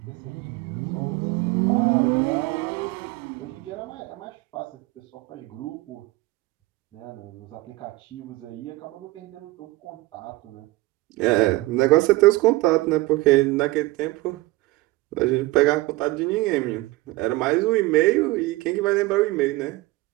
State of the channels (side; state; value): left; quieter; 20.0 dB